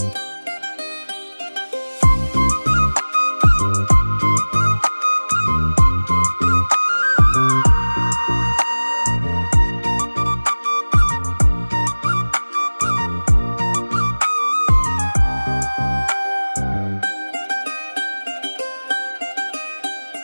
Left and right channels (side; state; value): both; inverted; correlation -1.00